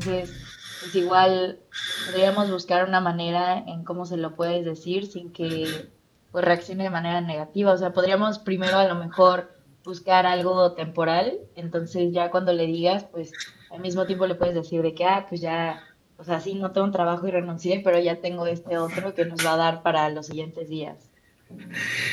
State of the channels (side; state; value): both; identical; correlation 1.00